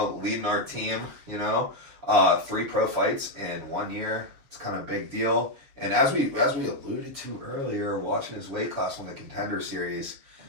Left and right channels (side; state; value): left; late; 7.4 ms